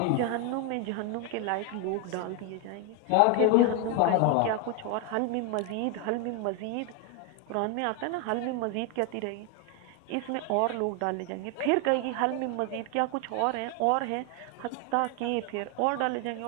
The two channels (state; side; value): different; both; correlation 0.01